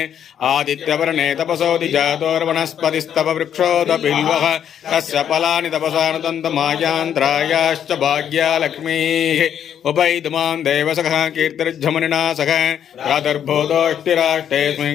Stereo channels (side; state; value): right; quieter; 9.2 dB